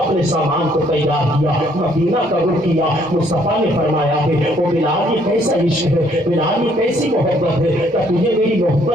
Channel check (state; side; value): normal; both; correlation 0.66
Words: اپنے سامان کو تیار کیا، مدینہ کا رخ کیا۔ مصطفیٰ نے فرمایا ہے او بلال یہ کیسا عشق ہے، بلال یہ کیسی محبت ہے، کیا تجھے میری